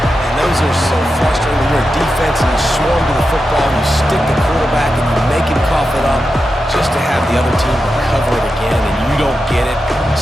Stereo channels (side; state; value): both; normal; correlation 0.89